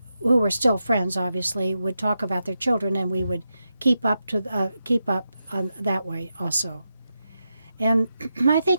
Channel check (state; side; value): inverted; both; correlation -0.87